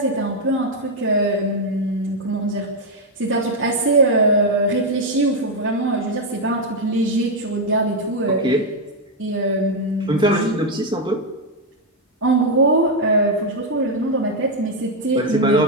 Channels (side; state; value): both; normal; correlation 0.02